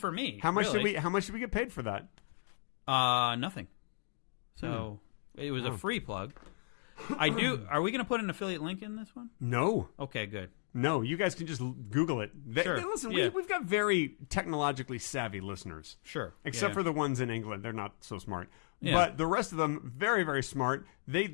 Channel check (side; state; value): right; silent; digital silence